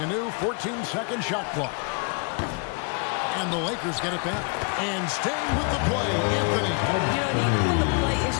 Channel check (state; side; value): quieter; right; 35.0 dB